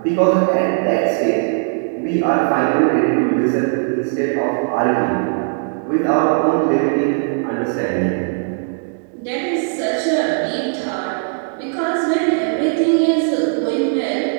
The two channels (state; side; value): silent; left; 65 dB below the other